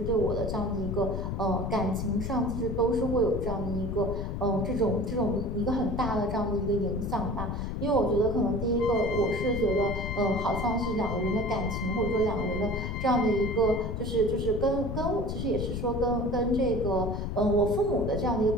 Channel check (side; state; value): left; noise; rumble, 3 dB below the sound